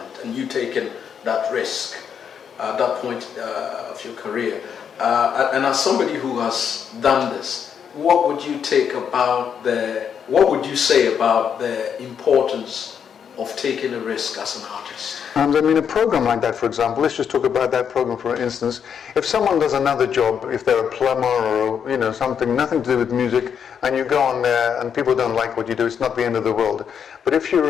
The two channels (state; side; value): quieter; right; 7.6 dB